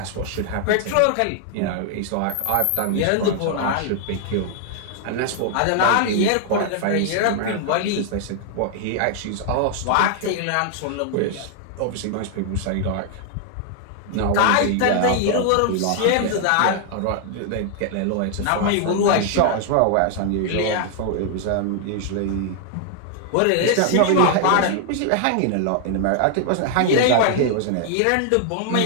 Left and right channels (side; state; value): both; different; correlation 0.00